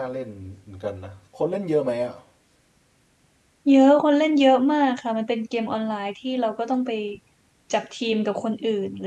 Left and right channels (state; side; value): identical; both; correlation 1.00